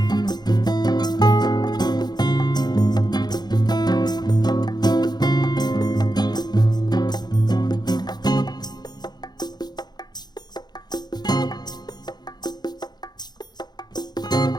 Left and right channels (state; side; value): late; right; 0.20 ms